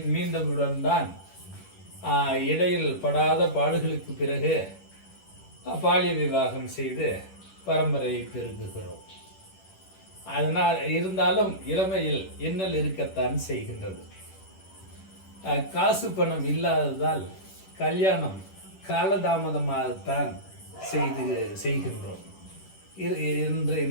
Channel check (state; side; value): late; right; 10 ms